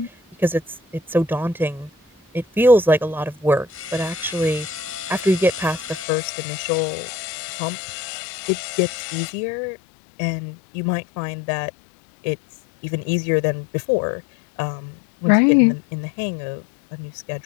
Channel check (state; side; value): drops out; right; at 6.1 s